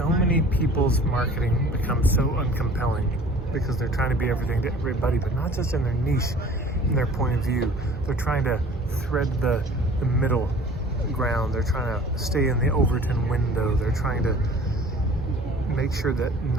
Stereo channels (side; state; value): both; normal; correlation 0.48